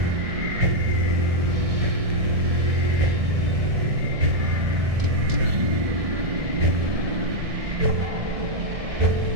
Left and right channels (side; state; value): left; late; 1.7 ms